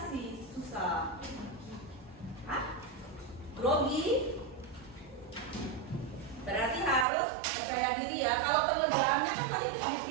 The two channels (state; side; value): drops out; left; at 7.1 s